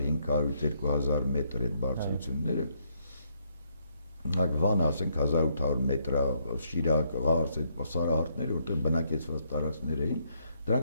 մետր այդ բարձրությունները, Վանը, ասենք 1800 մետր, Շիրակ, Ղարս, այդ սարահարթները, որտեղ բնակեցված տարածքներ էին,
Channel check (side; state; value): both; inverted; correlation -0.73